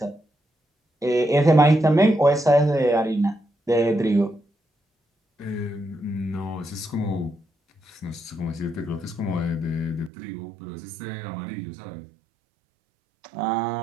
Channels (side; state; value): left; drops out; at 10.1 s